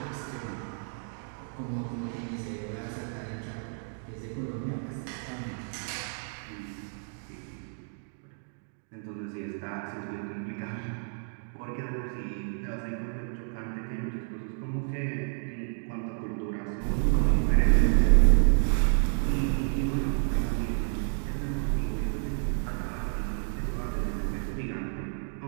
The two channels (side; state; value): left; silent; 58 dB below the other